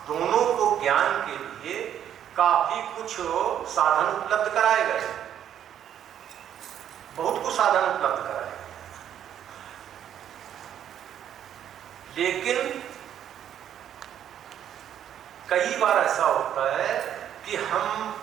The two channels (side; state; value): left; quieter; 10.0 dB